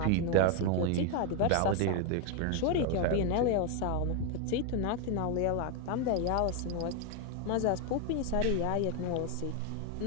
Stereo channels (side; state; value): both; different; correlation 0.01